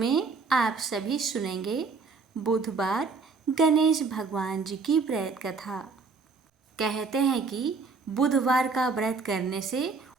आप सभी सुनेंगे बुधवार गणेश भगवान जी की व्रत कथा। कहते हैं कि बुधवार का व्रत करने से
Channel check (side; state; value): left; quieter; 4.6 dB